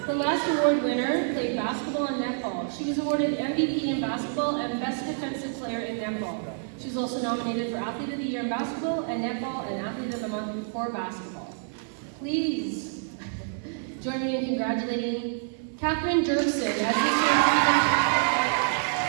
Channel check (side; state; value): left; silent; digital silence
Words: The last award winner played basketball and netball. She was awarded MVP in basketball and Best Defensive Player in netball. She was also nominated for Athlete of the Year in basketball and netball and Athlete of the Month for basketball. Please join me in congratulating Catherine Jerkson as this year's